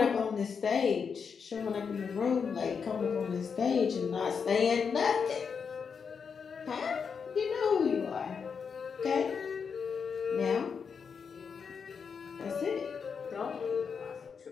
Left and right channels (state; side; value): quieter; right; 6.1 dB